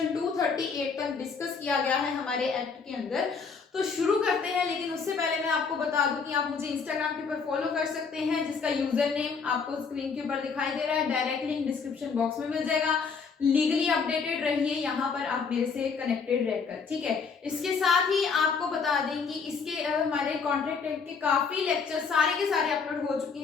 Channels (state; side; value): quieter; right; 5.4 dB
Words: 238 तक डिस्कस किया गया है हमारे एक्ट के अंदर। तो शुरू करते हैं, लेकिन उससे पहले मैं आपको बता दूं कि आप मुझे इंस्टाग्राम के ऊपर फॉलो कर सकते हैं, जिसका यूजर नेम आपको स्क्रीन के ऊपर दिखाई दे रहा है, डायरेक्ट लिंक डिस्क्रिप्शन बॉक्स में मिल जाएगा। लीगली अपडेटेड रहिए यहाँ पर, आप मेरे से कनेक्टेड रहकर, ठीक है। इसके साथ ही आपको बता दें कि इसके हमारे कॉन्ट्रैक्ट एक्ट के काफी लेक्चर सारे के सारे अपलोड हो चुके